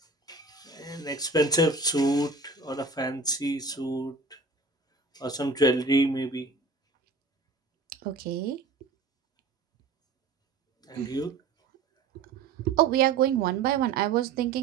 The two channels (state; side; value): quieter; left; 3.9 dB